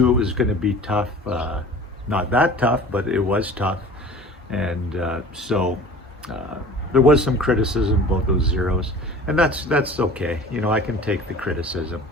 it was going to be tough, not that tough, but it was tough. And so there was some criticism about those zeros, and that's okay. You know, I can take the criticism.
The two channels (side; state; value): both; normal; correlation 0.42